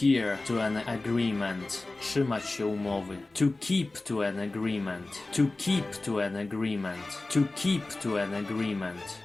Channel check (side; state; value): right; quieter; 3.1 dB